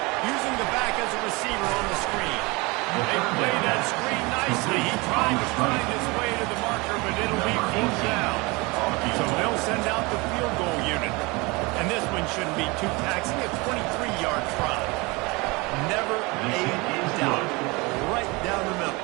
Using the back as a receiver on the screen. They play that screen nicely. He tried to find his way to the marker, but it'll be fourth down. So they'll send out the field goal unit. And this one shouldn't be too taxing. A 23-yard try. Never a doubt. Right down the middle.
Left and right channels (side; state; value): left; quieter; 25.5 dB